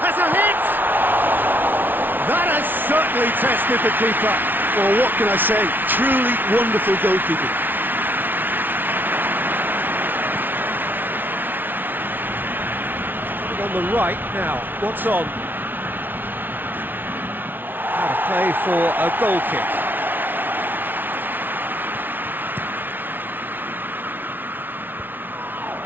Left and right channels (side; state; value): left; late; 0.091 ms